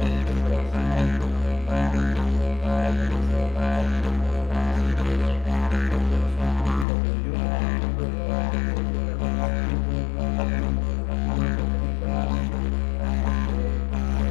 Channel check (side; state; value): right; drops out; at 6.9 s